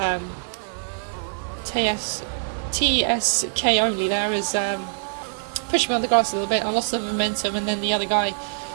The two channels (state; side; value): silent; left; 58 dB below the other